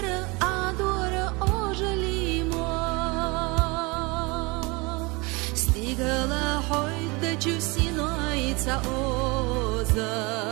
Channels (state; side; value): quieter; left; 26.3 dB